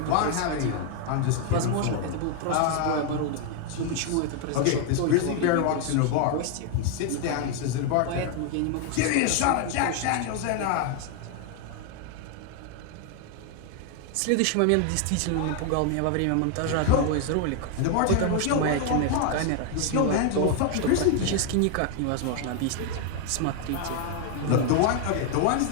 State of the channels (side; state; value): both; different; correlation 0.01